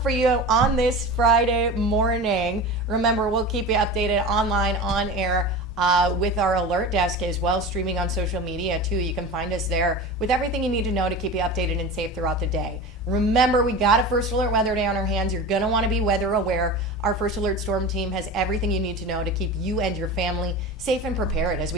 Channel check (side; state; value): both; normal; correlation 0.30